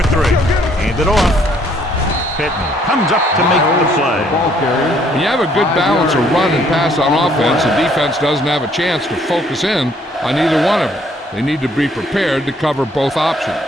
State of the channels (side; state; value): both; normal; correlation 0.64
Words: Hand it off. Pittman comes up to make the play. When you have a good balance of run and pass on offense, the defense doesn't have a chance to focus in on either one of them. They need to be prepared to cover both options.